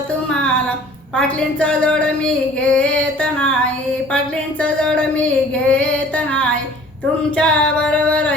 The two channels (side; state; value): both; normal; correlation 0.50